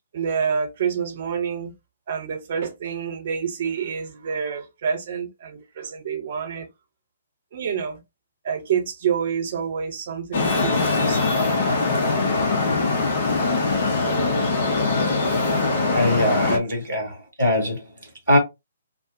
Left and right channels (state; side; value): inverted; both; correlation -0.60